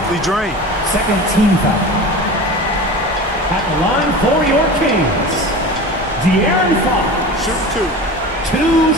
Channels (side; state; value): both; normal; correlation 0.33